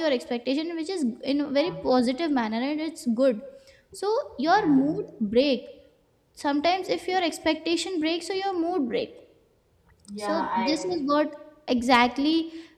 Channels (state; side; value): identical; both; correlation 1.00